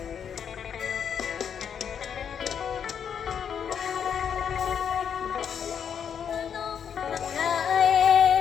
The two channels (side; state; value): right; quieter; 7.8 dB